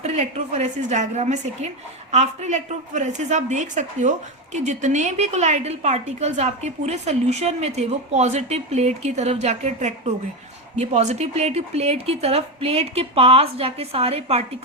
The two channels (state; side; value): normal; both; correlation 0.13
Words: इलेक्ट्रोफोरेसिस डायग्राम है सेकेंड. आफ्टर इलेक्ट्रोफोरेसिस आप देख सकते हो कि जितने भी कोलाइडल पार्टिकल्स आपके पूरे सोल्यूशन में थे वो पॉजिटिव प्लेट की तरफ जाके अट्रैक्ट हो गए. ये पॉजिटिव प्लेट की तरफ, प्लेट के पास जाके सारे